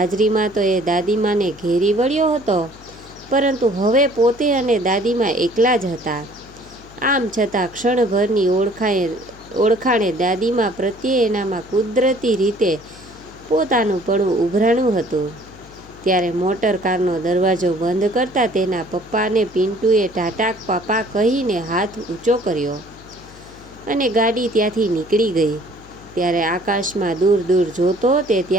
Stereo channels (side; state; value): left; noise; hum, 22 dB below the sound